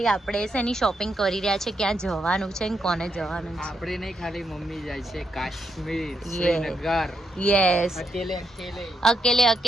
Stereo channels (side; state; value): both; normal; correlation 0.80